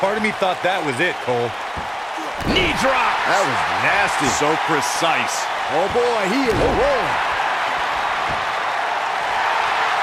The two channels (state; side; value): identical; both; correlation 1.00